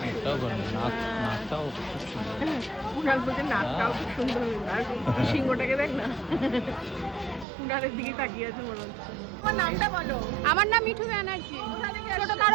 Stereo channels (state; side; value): drops out; left; at 7.5 s